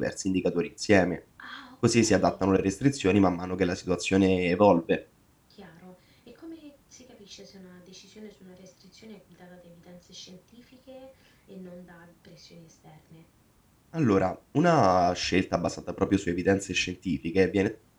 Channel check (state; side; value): identical; both; correlation 1.00